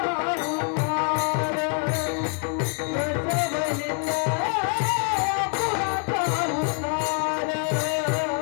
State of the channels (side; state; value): right; quieter; 38.6 dB